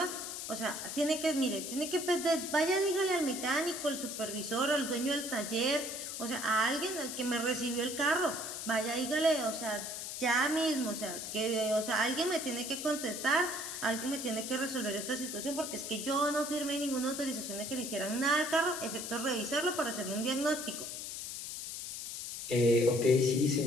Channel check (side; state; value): left; noise; hiss, 6 dB below the sound